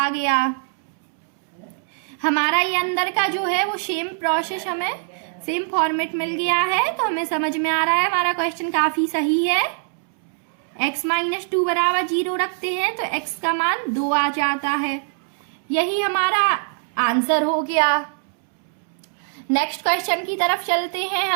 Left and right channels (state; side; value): silent; left; 64 dB below the other